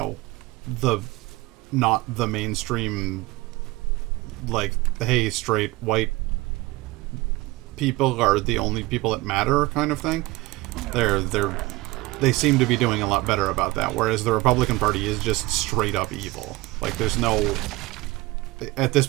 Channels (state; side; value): quieter; left; 20.3 dB